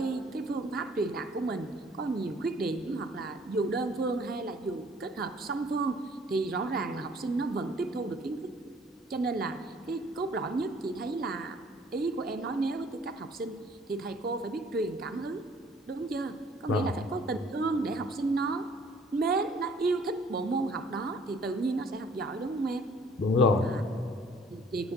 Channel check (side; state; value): both; normal; correlation 0.57